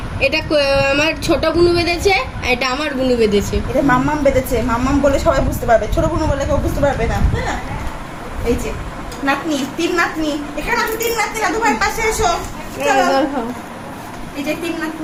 এটা আমার ছোট বুনু বেঁধেছে, আর এটা আমার বুনু বেঁধেছে। এটা মাম্মাম বেঁধেছে, মাম্মাম বলে সবাই বুঝতে পারবে, ছোট বোন বলে কেউ বুঝতে পারবে না। হ্যাঁ এই যে নাতনি, তিন নাতনি, এখানে আছে তিন নাতনি, দাদু ভাইয়ের পাশে এসো। চলো এই যে তিন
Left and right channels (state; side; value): identical; both; correlation 1.00